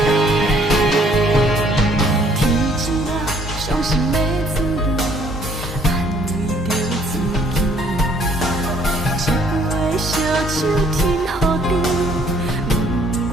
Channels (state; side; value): normal; both; correlation 0.62